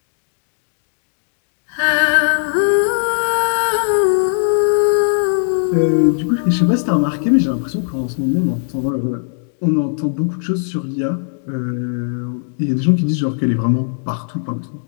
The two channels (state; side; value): silent; right; digital silence